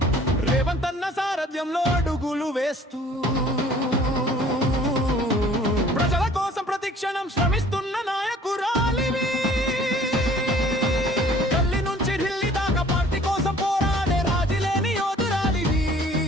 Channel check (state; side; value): normal; both; correlation 0.53